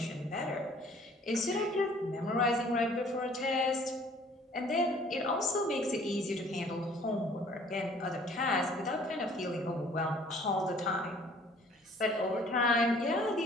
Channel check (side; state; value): both; normal; correlation 0.55